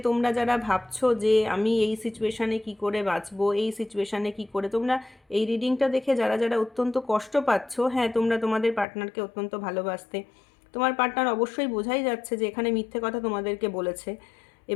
তোমরা যারা ভাবছো যে আমি এই সিচুয়েশানে কি করে বাঁচবো, এই সিচুয়েশানে কি করে, তোমরা এই রিডিংটা দেখে যারা যারা অত্যন্ত কষ্ট পাচ্ছ, হ্যাঁ তোমরা তোমাদের পার্টনারকে অত্যন্ত ভালোবাসতে, তোমার পার্টনার অবশ্যই বোঝাই যাচ্ছে যে এখানে মিথ্যে কথা তোমাদেরকে বলেছে,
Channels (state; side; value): drops out; right; at 8.8 s